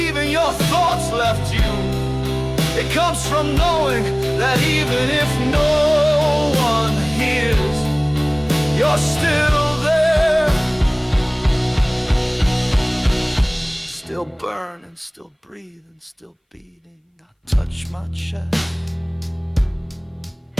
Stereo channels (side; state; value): both; identical; correlation 1.00